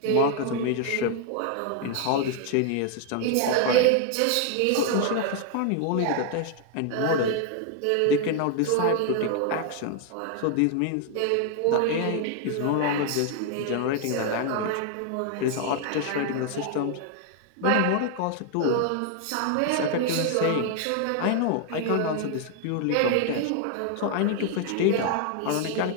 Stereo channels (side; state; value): both; different; correlation 0.00